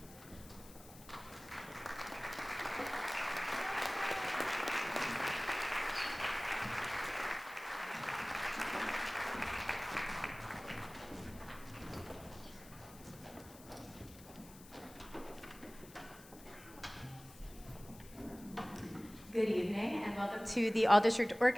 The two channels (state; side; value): noise; left; hiss, 20 dB below the sound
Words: Good evening and welcome to the All-District